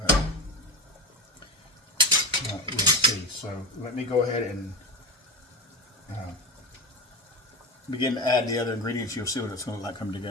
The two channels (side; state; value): both; normal; correlation 0.22